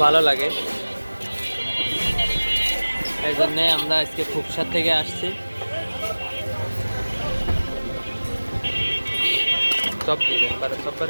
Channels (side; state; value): both; inverted; correlation -1.00